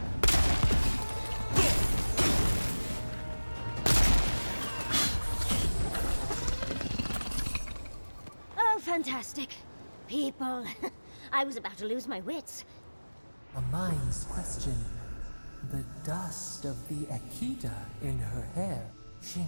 Oh, fantastic. People. I was about to lose my wits. A mind's question. The dust of the Akita in her hair. She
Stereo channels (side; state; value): both; inverted; correlation -1.00